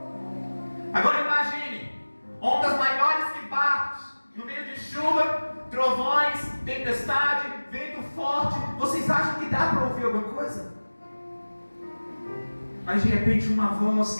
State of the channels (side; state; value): both; inverted; correlation -1.00